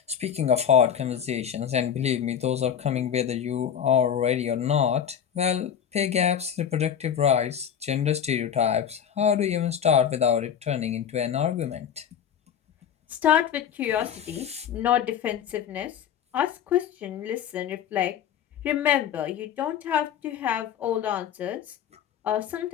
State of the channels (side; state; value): right; quieter; 8.7 dB